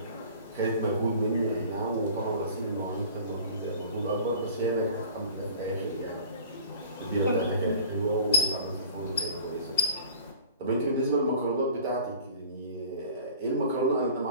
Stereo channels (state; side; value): inverted; both; correlation -0.45